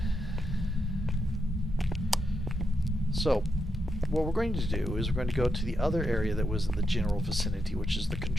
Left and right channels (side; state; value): both; normal; correlation 0.84